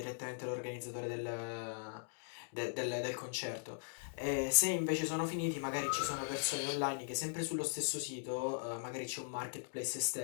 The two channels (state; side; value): silent; right; digital silence